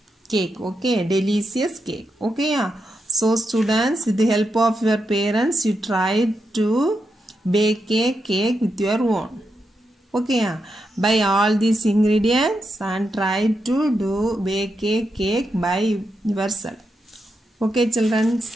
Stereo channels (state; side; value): normal; both; correlation 0.85